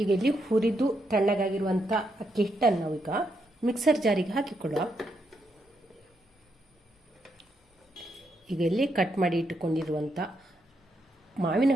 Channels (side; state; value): both; normal; correlation 0.80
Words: ಈಗ ಇಲ್ಲಿ ಹುರಿದು ತಣ್ಣಗಾಗಿರುವಂಥ ಅಕ್ಕಿ ಹಿಟ್ಟನ್ನು ನಾವೀಗ ಮಿಕ್ಸರ್ ಜಾರಿಗೆ ಹಾಕಿಕೊಳ್ಳುವ. ಈಗ ಇಲ್ಲಿ ಕಟ್ ಮಾಡಿ ಇಟ್ಟುಕೊಂಡಿರುವಂಥ ಮಾವಿನ